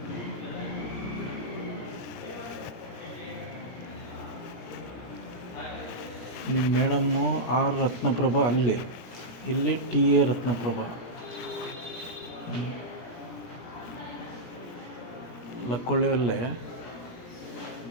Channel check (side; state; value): right; late; 17 ms